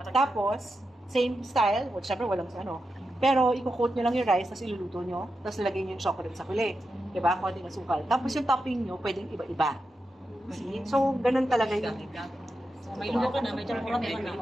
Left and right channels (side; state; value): both; normal; correlation 0.88